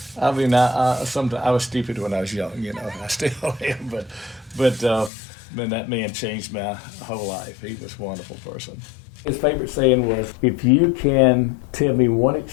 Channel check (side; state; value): right; drops out; at 5.1 s